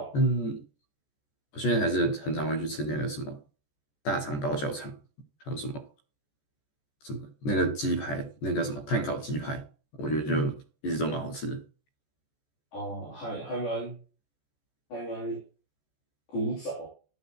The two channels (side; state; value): right; late; 14 ms